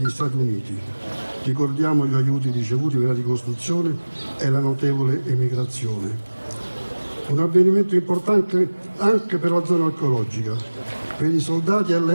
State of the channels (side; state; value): both; inverted; correlation -1.00